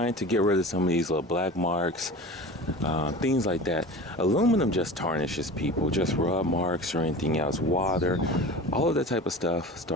to get rid of some of these little black marks, things like that. Aluminum just tarnishes people, just rub marks or anything else, water, all of that type of stuff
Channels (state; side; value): normal; both; correlation 0.35